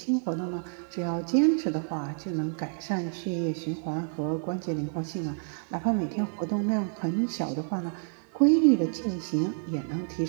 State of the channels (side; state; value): left; silent; 59 dB below the other